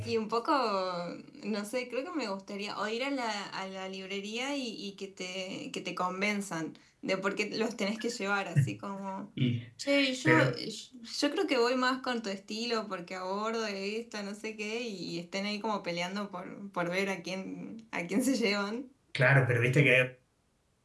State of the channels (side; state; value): both; identical; correlation 1.00